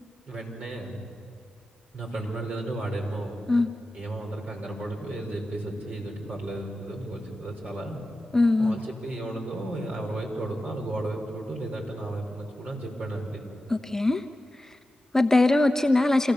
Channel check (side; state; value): both; normal; correlation 0.92